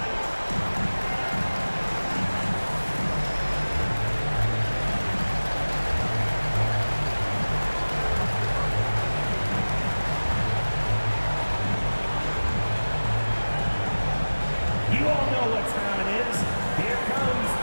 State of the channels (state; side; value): inverted; both; correlation -1.00